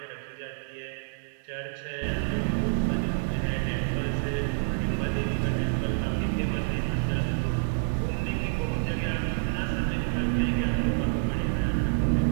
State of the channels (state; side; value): silent; left; digital silence